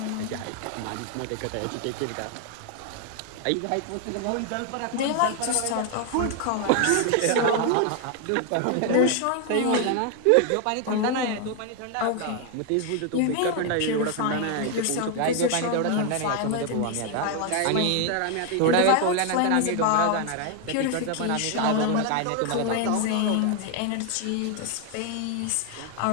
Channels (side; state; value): both; different; correlation 0.01